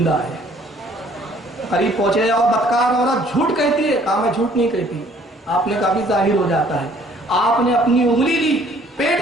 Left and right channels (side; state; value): both; normal; correlation 0.59